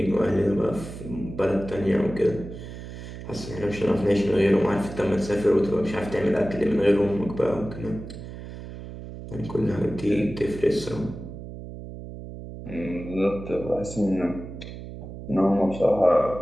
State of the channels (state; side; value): noise; right; hum, 11 dB below the sound